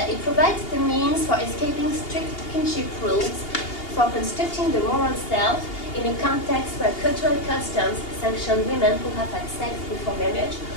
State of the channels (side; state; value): right; late; 2.8 ms